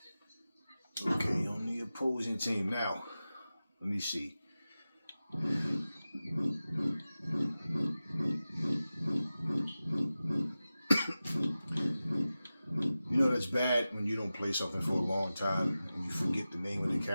Okay, on the opposing team now. Let me see. You know that's bad when you don't play something for a long time and you forget the name of the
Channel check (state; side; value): inverted; both; correlation -0.95